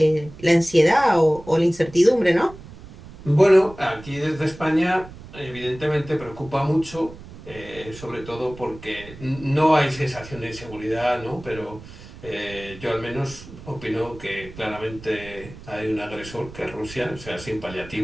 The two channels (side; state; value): right; noise; rumble, 17 dB below the sound